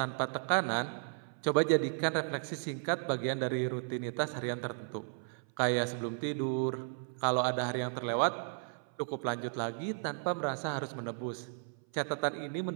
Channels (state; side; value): silent; left; 55 dB below the other